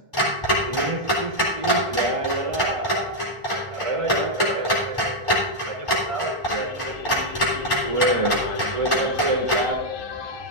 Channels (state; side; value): late; left; 1.4 ms